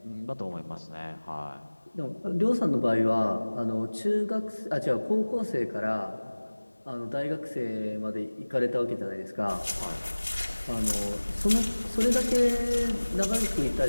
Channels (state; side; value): inverted; both; correlation -1.00